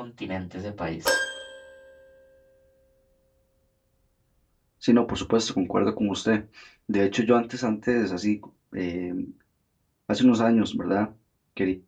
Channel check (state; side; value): identical; both; correlation 1.00